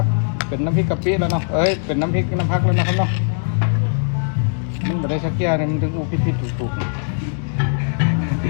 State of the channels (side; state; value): right; silent; digital silence